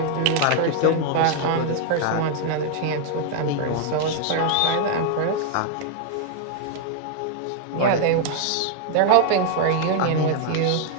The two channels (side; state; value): both; different; correlation 0.00